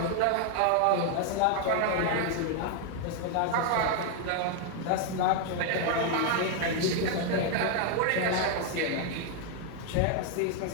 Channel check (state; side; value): different; both; correlation 0.00